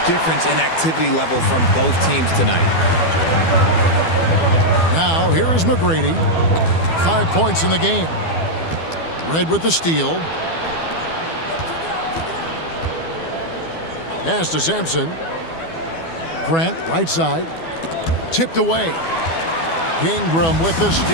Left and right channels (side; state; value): right; late; 12 ms